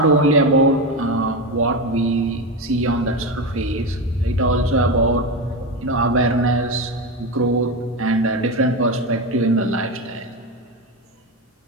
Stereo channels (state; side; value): normal; both; correlation 0.16